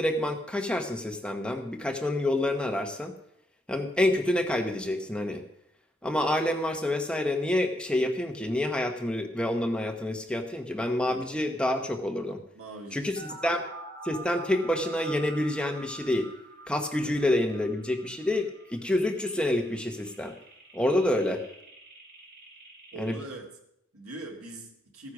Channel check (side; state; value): both; normal; correlation 0.79